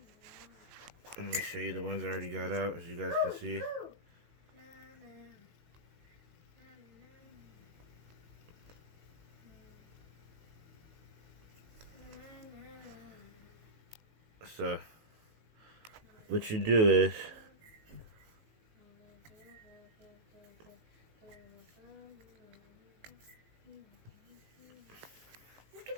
Let me show you the ones I already got out, as you guys can see. So, what you do is, Just give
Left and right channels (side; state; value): left; late; 18 ms